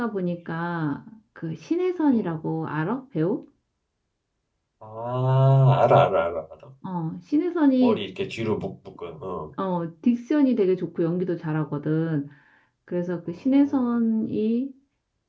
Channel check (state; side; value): identical; both; correlation 1.00